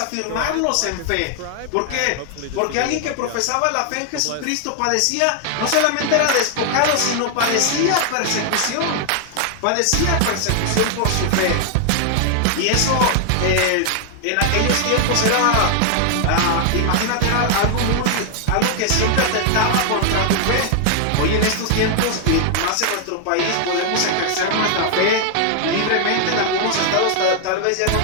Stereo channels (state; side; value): different; both; correlation 0.00